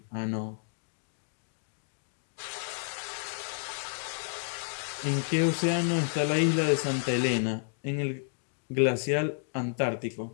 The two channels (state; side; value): silent; right; digital silence